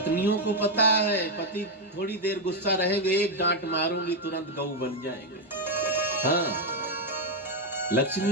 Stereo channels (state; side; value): normal; both; correlation 0.03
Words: को पता है पति थोड़ी देर गुस्सा रहेंगे, एक डांट मारूंगी तुरंत गऊ बन जाएंगे। हाँ,